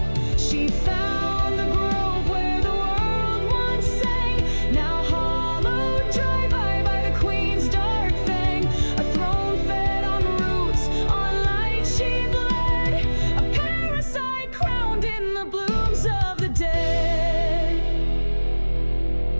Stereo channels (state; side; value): inverted; both; correlation -1.00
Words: She found the grove where the world once sang, now hollowed dry by the queen's dark fang. A throne fed on roots, on light she bled, a parasite crowned in the blooms of the dead.